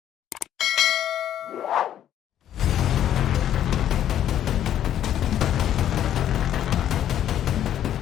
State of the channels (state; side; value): quieter; right; 10.9 dB